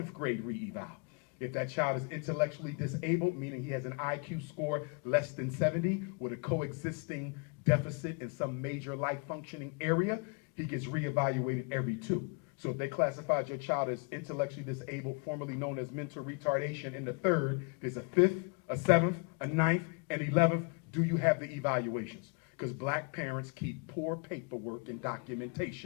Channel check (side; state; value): right; quieter; 35.0 dB